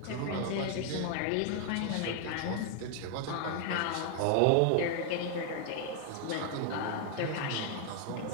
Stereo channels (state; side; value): different; both; correlation 0.00